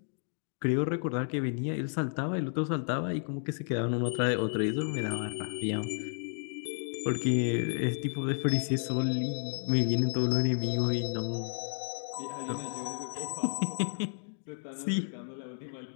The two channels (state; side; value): silent; right; digital silence